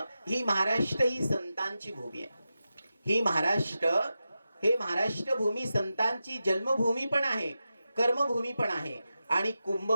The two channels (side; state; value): both; inverted; correlation -0.91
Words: ही महाराष्ट्र ही संतांची भूमी आहे. ही महाराष्ट्र भूमी संतांची जन्मभूमी पण आहे, कर्मभूमी पण आहे आणि